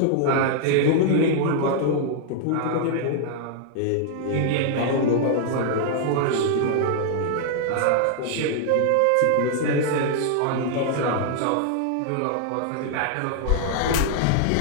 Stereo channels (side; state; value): both; different; correlation -0.01